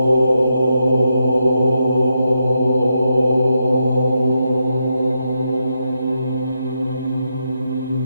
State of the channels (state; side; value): inverted; both; correlation -0.83